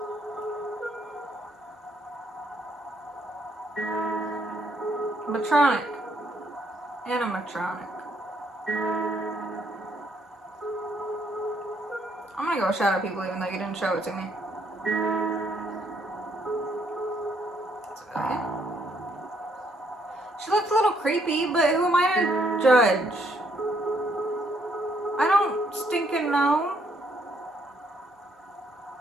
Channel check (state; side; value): normal; both; correlation 0.70